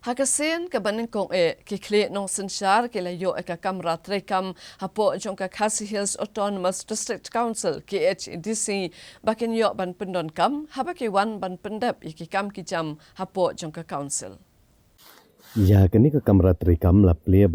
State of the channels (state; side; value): identical; both; correlation 1.00